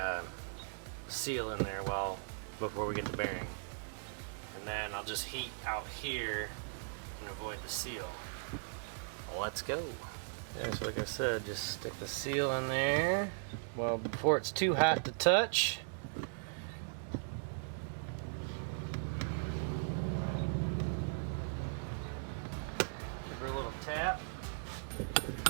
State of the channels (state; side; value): silent; left; digital silence